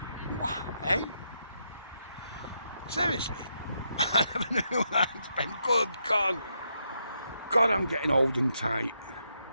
What, eh? Seriously? I never knew that I'd spend. Good God. God, I'm getting old and tight.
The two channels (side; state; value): both; inverted; correlation -0.80